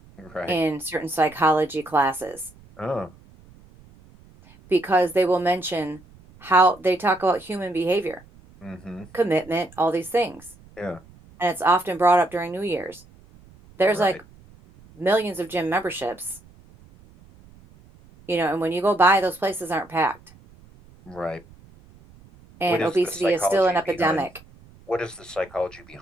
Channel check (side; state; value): right; noise; rumble, 25 dB below the sound